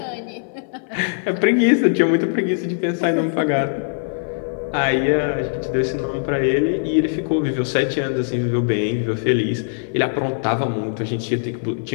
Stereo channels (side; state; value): right; silent; 57 dB below the other